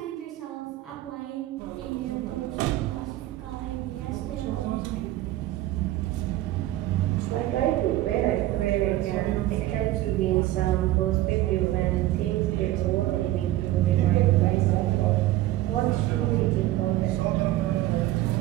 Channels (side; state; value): left; quieter; 15.5 dB